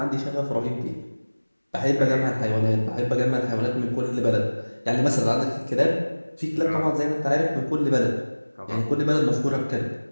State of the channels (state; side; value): inverted; both; correlation -1.00